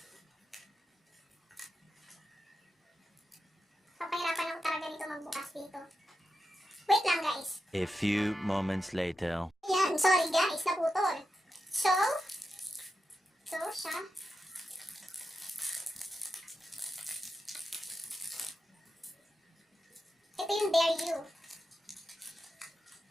Papahirapan ako talaga dito magbukas dito. Wait lang, guys. A few moments later. Yan, sorry guys, naputol. So siya. Ito yung Dare You.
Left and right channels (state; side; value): normal; both; correlation 0.89